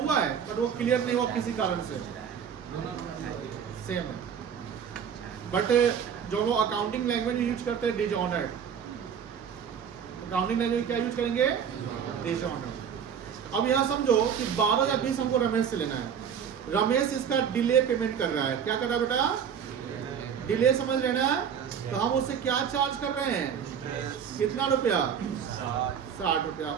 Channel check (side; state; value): left; quieter; 7.8 dB